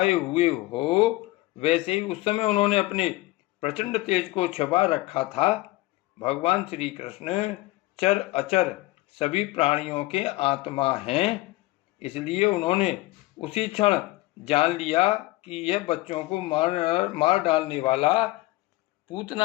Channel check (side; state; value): right; quieter; 19.6 dB